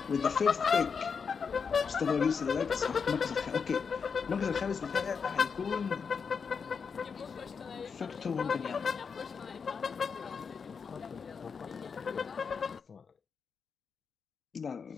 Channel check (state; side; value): quieter; right; 5.9 dB